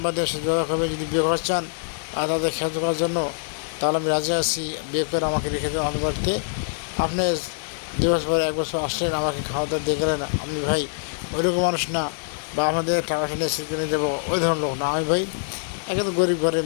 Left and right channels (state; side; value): silent; right; digital silence